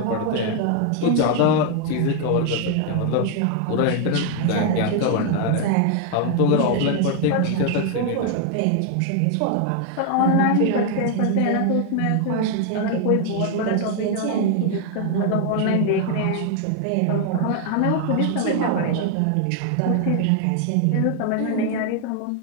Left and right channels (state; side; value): different; both; correlation 0.00